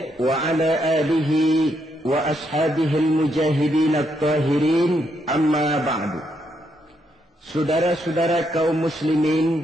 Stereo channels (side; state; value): both; normal; correlation 0.77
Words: وعلى آله وأصحابه المجاهدين الطاهرين أما بعد. Saudara-saudara kaum